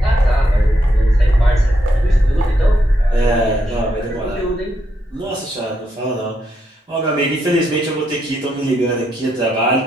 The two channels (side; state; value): both; normal; correlation 0.79